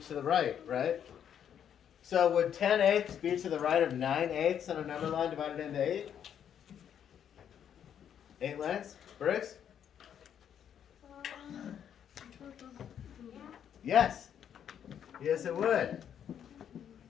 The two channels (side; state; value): right; quieter; 9.0 dB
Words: the right, right? So would 10/8 be to the right of 9/8 on a number line divided into 8? 8 lengths? Briggs? Yes. Yes, it would.